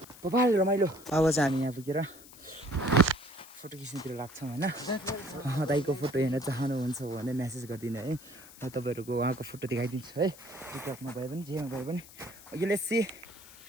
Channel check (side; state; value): left; noise; hiss, 19 dB below the sound